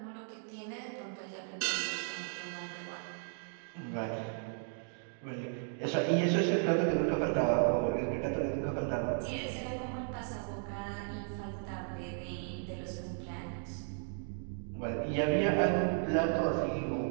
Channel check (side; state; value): left; silent; digital silence